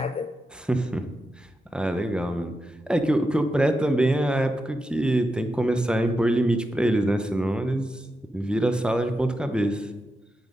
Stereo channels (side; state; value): both; normal; correlation 0.88